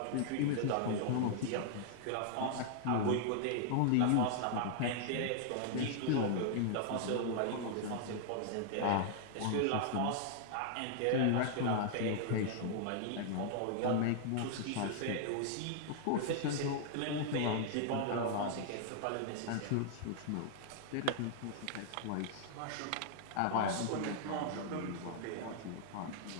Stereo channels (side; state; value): both; different; correlation -0.01